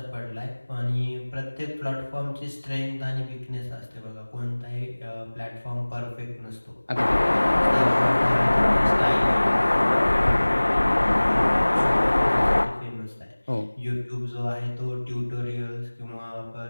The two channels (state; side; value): inverted; both; correlation -1.00